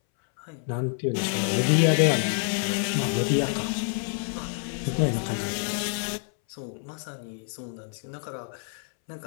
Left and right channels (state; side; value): silent; right; 60 dB below the other